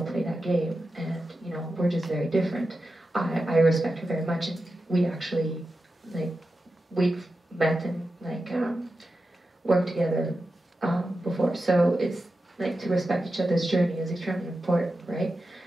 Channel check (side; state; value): both; normal; correlation 0.91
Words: play that game. And, we're just very different. I respect her very much, and we actually, we've met and, worked together before. So it's, to respect each other's journey is extremely important, right?